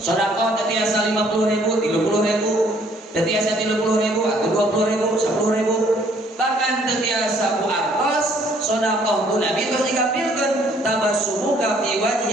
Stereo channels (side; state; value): both; normal; correlation 0.62